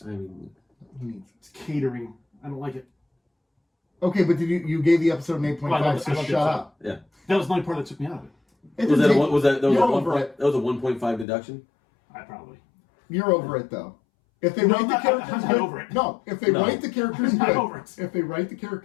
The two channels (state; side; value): drops out; right; at 11.2 s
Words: I mean, He needs. it's catering. I don't like it. Okay, but you gave the episode an 8.5, Well, I love so the shut episode. up. yeah. That was the only part that took me out of it. It Was didn't that a take- one? Was that was You're a one over point? it. That was a 1.5 deduction. I probably. You're over it though. If they No, write I'm the not- characters I'm not good, over it. no. If they No. write the characters I'm not good, over it. if they write the